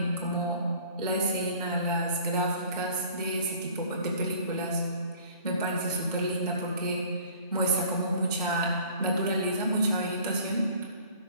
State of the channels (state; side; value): inverted; both; correlation -0.50